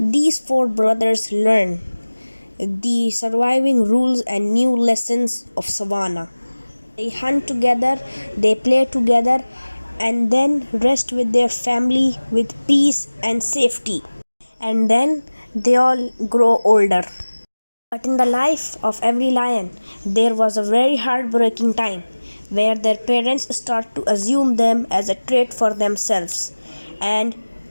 4 brothers learn the surviving rules and new lessons of savannah. They hunt together, they play together, and then rest with their family with peace and safety. And then they all grow older. But in the life of every lion, there was a very heartbreaking time where their parents start to assume them as a trait for themselves and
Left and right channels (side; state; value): both; inverted; correlation -1.00